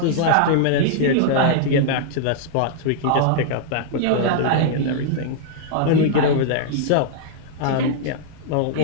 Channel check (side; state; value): both; different; correlation -0.01